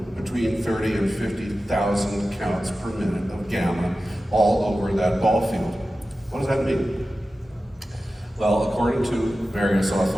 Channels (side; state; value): both; normal; correlation 0.94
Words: between 30 and 50,000 counts per minute of gamma all over that ball field. What does that mean? Well, according to various